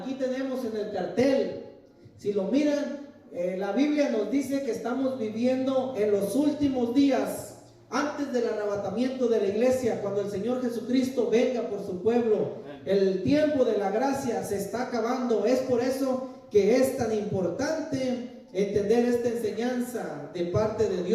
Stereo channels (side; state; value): both; identical; correlation 1.00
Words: tenemos en el cartel. Si lo miran, la Biblia nos dice que estamos viviendo en los últimos días, antes del arrebatamiento de la iglesia, cuando el Señor Jesucristo venga por su pueblo. El tiempo de la gracia se está acabando. Es por eso que es tan importante entender esta enseñanza de parte de